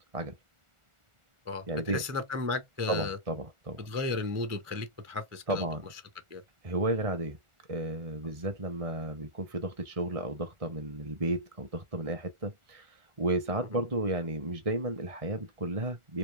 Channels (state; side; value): late; left; 1.4 ms